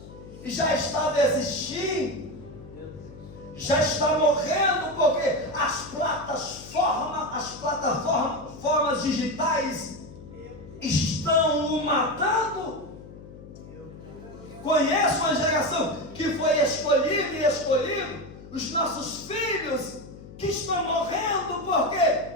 e já está desistindo, já está morrendo, porque as plataformas digitais estão o matando. Conheço uma geração que foi escolhido, os nossos filhos que estão morrendo porque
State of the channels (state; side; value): noise; left; hum, 16 dB below the sound